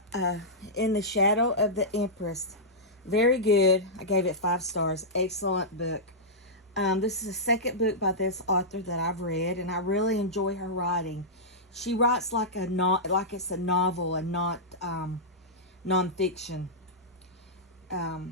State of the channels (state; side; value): normal; both; correlation -0.12